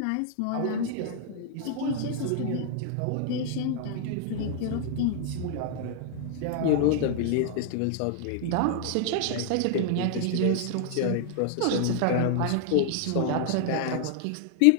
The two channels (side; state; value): both; different; correlation -0.01